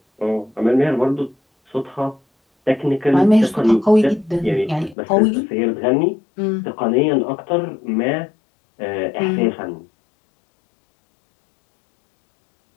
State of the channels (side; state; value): right; drops out; at 5.0 s